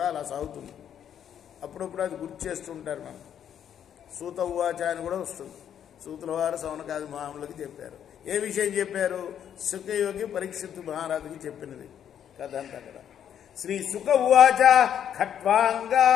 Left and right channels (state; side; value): quieter; right; 9.3 dB